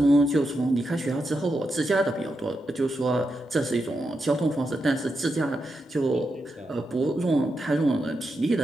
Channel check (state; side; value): normal; both; correlation 0.86